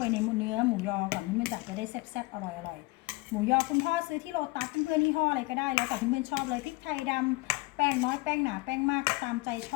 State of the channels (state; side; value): quieter; right; 23.2 dB